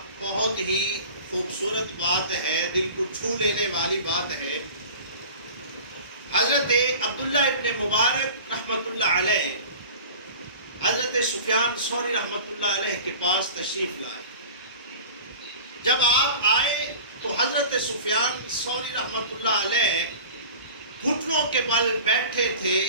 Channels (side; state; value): both; inverted; correlation -0.38